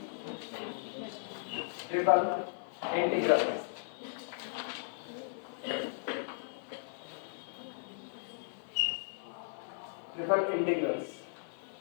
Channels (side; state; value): right; silent; 54 dB below the other